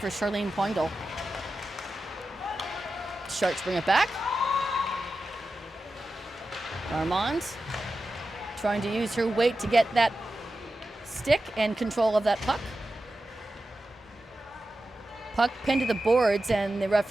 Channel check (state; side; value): normal; both; correlation 0.92